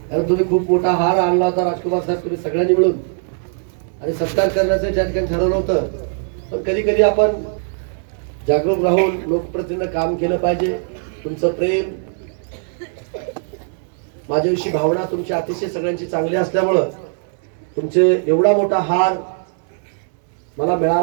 तुम्ही खूप मोठा हार आणला होता राजकुमार साहेब तुम्ही सगळ्यांनी मिळून आणि सत्कार करण्याचं त्या ठिकाणी ठरवलं होतं. पण कधी कधी आपण जागरूक राहून लोकप्रतिनिधीनं काम केलं पाहिजे. तुमचं प्रेम, माझ्याविषयी भावना तुमची अतिशय सगळ्यांची चांगली असल्यामुळं तुमचे एवढा मोठा हार मला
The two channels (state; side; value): silent; left; digital silence